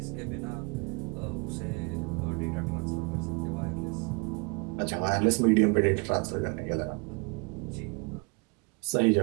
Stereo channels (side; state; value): left; quieter; 32.4 dB